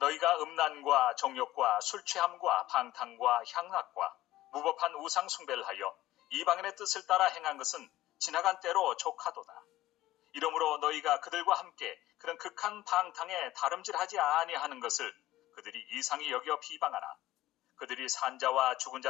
음란과 정욕과 술취함과 방탕과 향락과 무법한 우상 숭배를 하여 이방인의 뜻을 따라 행한 것은 지나간 때로 족하도다. 이러므로 너희가 그들과 함께 그런 극한 방탕에 다름질하지 아니하는 것을 그들이 이상히 여겨 비방하나 그들이 산자와 죽은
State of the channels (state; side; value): quieter; right; 15.5 dB